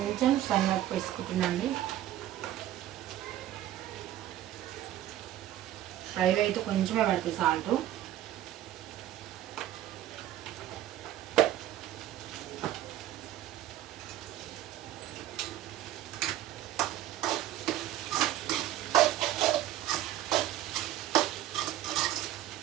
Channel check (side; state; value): left; quieter; 13.1 dB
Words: సన్నపు వేసుకుంటున్నాండి. ఫ్రైలో అయితే కొంచెమే పడుతుంది సాల్ట్.